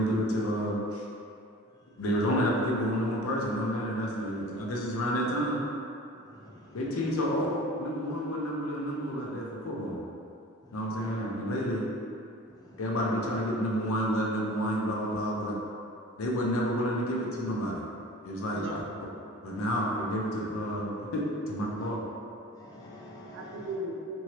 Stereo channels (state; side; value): normal; both; correlation 0.42